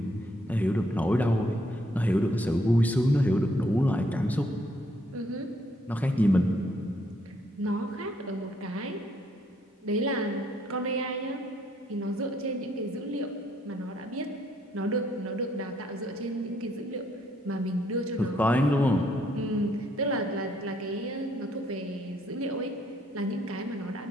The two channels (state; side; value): normal; both; correlation 0.70